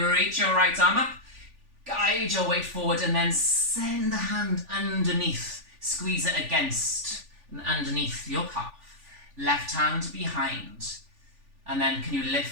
reach your right arm up. guide your weight forward and then send the hand underneath. Squeeze it against and underneath your calf. Left hand behind. And then can you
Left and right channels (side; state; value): left; late; 3.4 ms